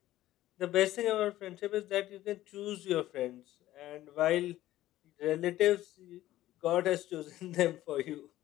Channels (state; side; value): quieter; right; 14.8 dB